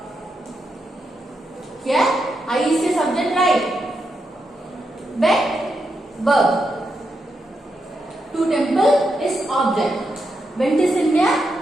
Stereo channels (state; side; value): normal; both; correlation 0.84